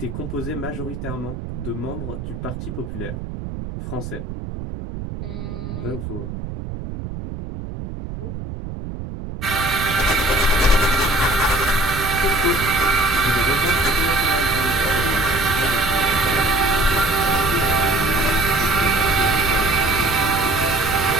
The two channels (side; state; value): right; noise; rumble, 8 dB below the sound